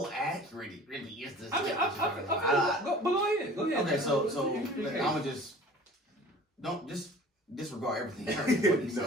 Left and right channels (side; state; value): both; normal; correlation 0.45